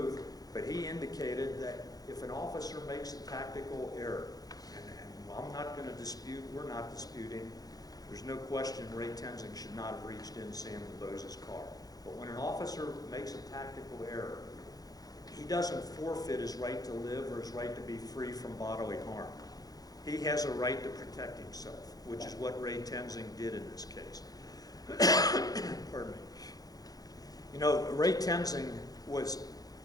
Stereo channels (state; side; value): late; right; 0.18 ms